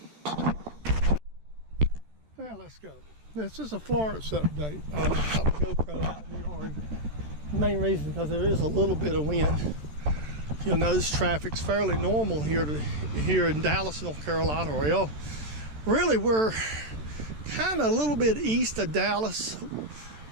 Well, let's go. This is a Florence update. I got my GoPro out in the yard. The main reason because there is a little bit of wind. You'll notice traffic's fairly normal here in Dallas, North Carolina. Well, really we're kind of a little bit east of Dallas.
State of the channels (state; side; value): late; left; 13 ms